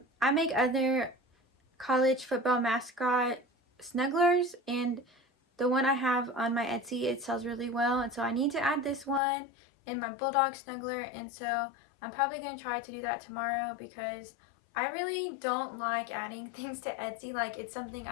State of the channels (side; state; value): right; drops out; at 9.2 s